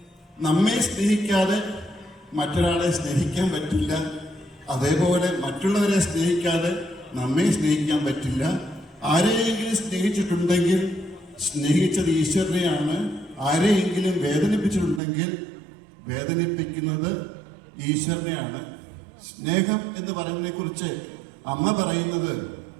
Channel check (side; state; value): left; drops out; at 15.0 s